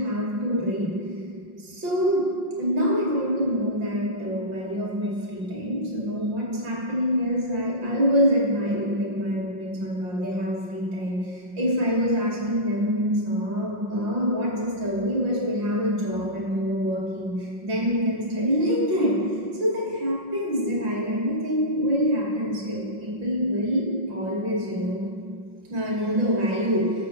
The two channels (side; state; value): left; late; 5.6 ms